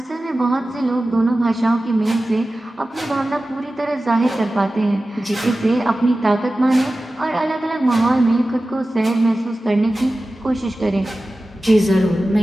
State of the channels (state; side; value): normal; both; correlation 0.95